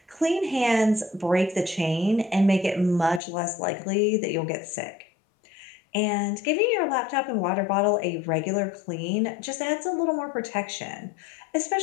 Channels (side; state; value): right; drops out; at 3.2 s